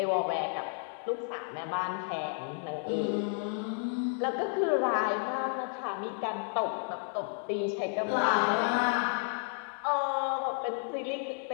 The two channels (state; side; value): silent; right; 56 dB below the other